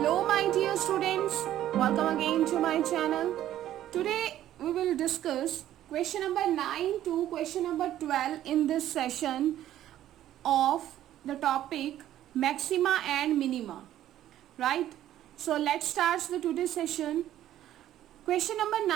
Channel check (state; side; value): quieter; left; 12.5 dB